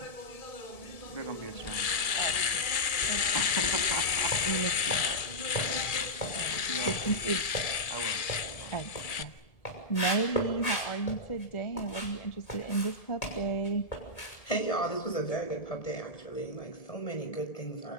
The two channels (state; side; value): late; right; 1.8 ms